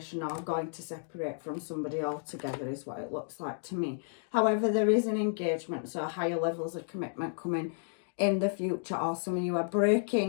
or going to separate from somebody altogether is what it looks like to me. However, there is an engagement, so higher levels of commitment coming in the future, or some of you are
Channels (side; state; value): right; silent; digital silence